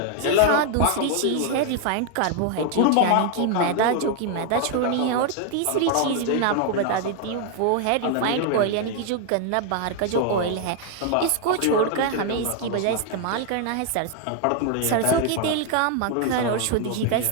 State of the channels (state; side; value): different; both; correlation 0.00